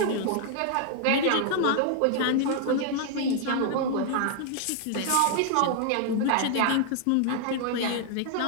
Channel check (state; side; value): different; both; correlation 0.00